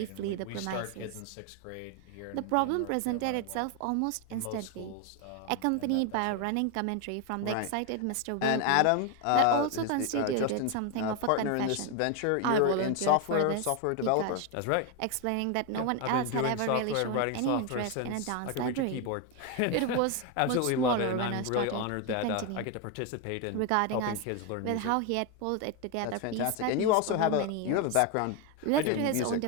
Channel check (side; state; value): both; different; correlation 0.02